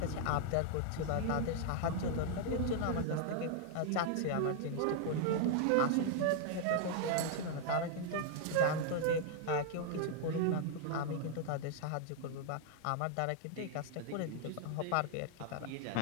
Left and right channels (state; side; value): different; both; correlation 0.00